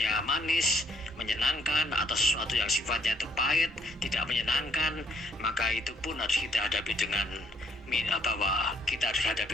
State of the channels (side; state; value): both; normal; correlation 0.67